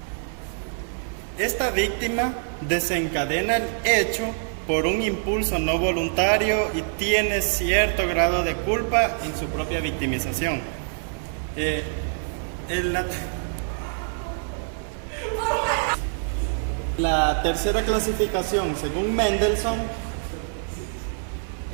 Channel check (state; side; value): silent; left; 62 dB below the other